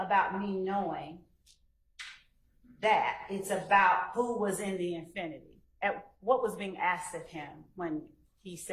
me knowing that, it's about who was in the infinity? What was being asked of him when he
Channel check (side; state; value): both; identical; correlation 1.00